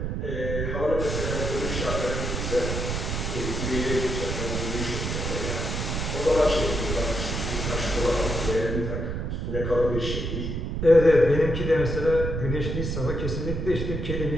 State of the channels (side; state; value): right; noise; rumble, 2 dB below the sound